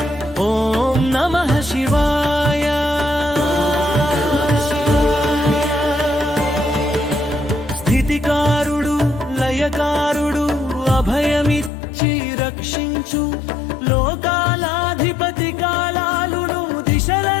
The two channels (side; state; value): right; drops out; at 11.7 s